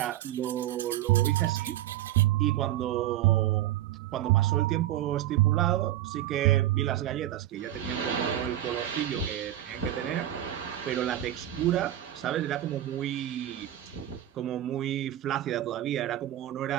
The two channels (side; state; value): left; quieter; 13.1 dB